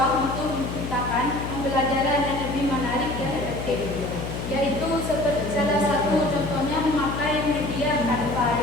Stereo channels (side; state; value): left; noise; hum, 6 dB below the sound